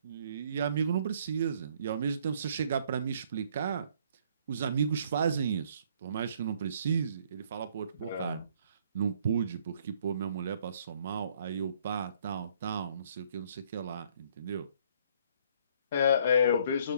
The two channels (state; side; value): inverted; both; correlation -0.62